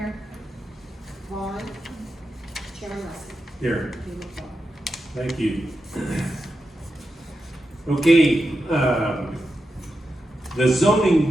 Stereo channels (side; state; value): both; normal; correlation 0.89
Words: Vaughn. Chairman Russell. Here. You look well. Thank you. Okay, the